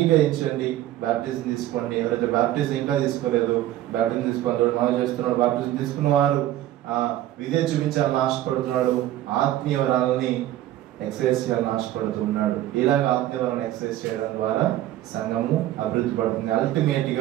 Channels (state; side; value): quieter; left; 13.8 dB